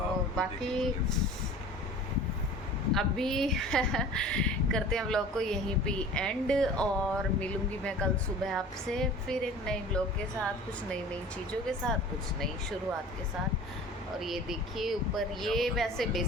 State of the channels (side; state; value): both; normal; correlation 0.42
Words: बाकी अभी करते हैं व्लॉग को यहीं पे एंड, और मिलूंगी मैं कल सुबह आपसे फिर एक नए व्लॉग के साथ, कुछ नई नई चीज़ों के साथ, कुछ नई शुरुआत के साथ। और ये देखिए ऊपर, ये वैसे